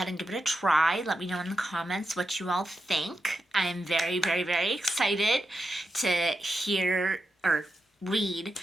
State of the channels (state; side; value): normal; both; correlation 0.87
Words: and give it a try. Let me know in the comments what you all think. I am very, very, very excited to hear or read,